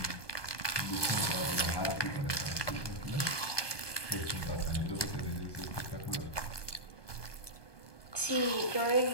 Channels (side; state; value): right; late; 1.2 ms